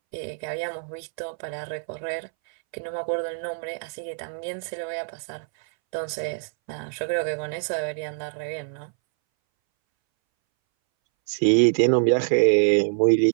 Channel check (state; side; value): silent; left; 62 dB below the other